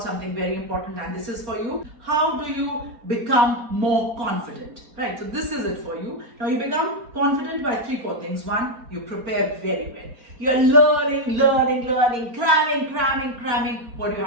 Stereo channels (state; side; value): late; left; 4.3 ms